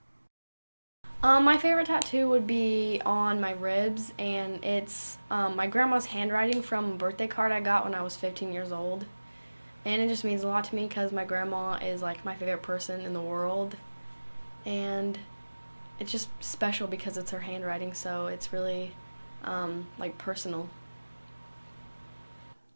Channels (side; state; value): both; inverted; correlation -1.00